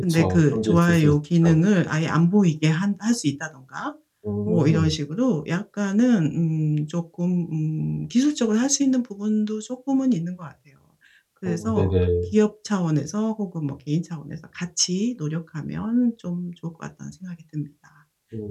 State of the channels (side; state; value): both; identical; correlation 1.00